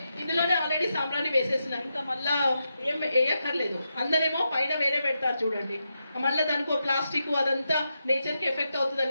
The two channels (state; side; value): inverted; both; correlation -0.86